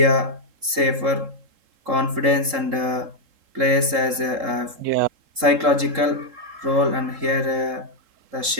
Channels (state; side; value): late; left; 3.7 ms